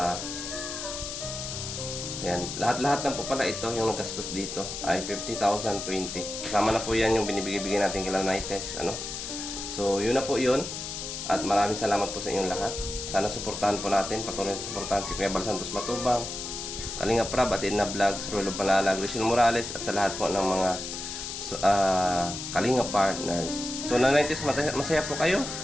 yan, lahat-lahat na po pala ito, yung nagastos dito ay 50,020. Kasama na po yan yung binibigay natin kay Nanay Tess, So, yun na po yun. At maraming salamat po sa inyong lahat. Sana suportahan po natin, patuloy na suportahan si Kuya Bal Santos Matubang, Kalinga Prab, Atin na Vlogs, Rulo Palalag, Rizal Morales, at sa lahat po ng mga Kalinga partners. So, Nanay Tess, masaya po kayo?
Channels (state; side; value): noise; left; hiss, 6 dB below the sound